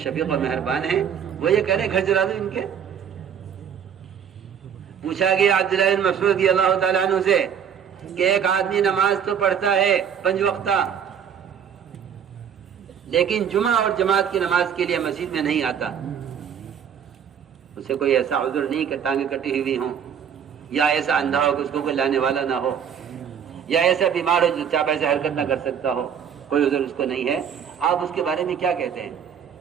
شفیق اور مہربان ہیں وہ یہ کہہ رہے گھر جلا دو ان کے. پوچھا گیا عبداللہ بن مسعود رضی اللہ تعالیٰ عنہ سے کہ ایک آدمی نماز تو پڑھتا ہے 5 وقتہ لیکن جمعہ اور جماعت کی نماز کے لیے مسجد میں نہیں آتا, اسے کوئی ایسا عذر نہیں کہ ٹانگیں کٹی ہوئی ہوں, یا ایسا اندھا ہو کہ اس کو کوئی لانے والا نہ ہو, یا ایسا بیمار ہو جو چاپ ایسے حرکت نہ کر سکتا ہو, کوئی عذر اس کو نہیں ہے. آپ اس کے بارے میں کیا کہتے ہیں؟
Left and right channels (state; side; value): quieter; left; 8.1 dB